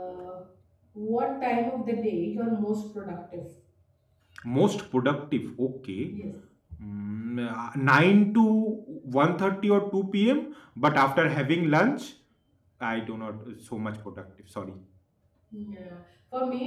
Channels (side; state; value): both; identical; correlation 1.00